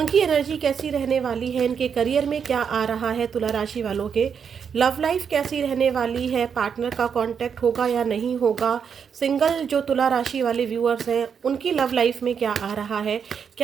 एनर्जी कैसी रहने वाली है। इनके करियर में क्या आ रहा है। तुला राशि वालों के लव लाइफ कैसी रहने वाली है। पार्टनर का कांटेक्ट होगा या नहीं होगा। सिंगल जो तुला राशि वाले व्यूअर्स हैं उनकी लव लाइफ में क्या आ रहा है।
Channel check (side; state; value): left; quieter; 7.0 dB